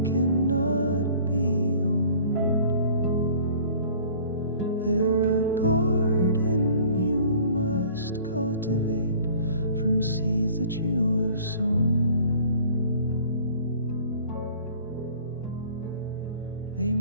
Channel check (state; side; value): inverted; both; correlation -0.50